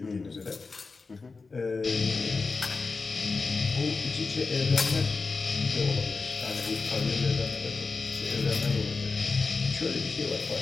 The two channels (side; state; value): right; quieter; 4.2 dB